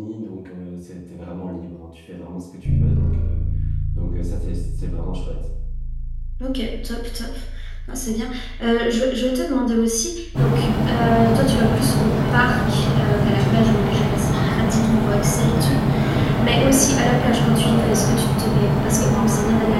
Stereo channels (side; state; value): both; identical; correlation 1.00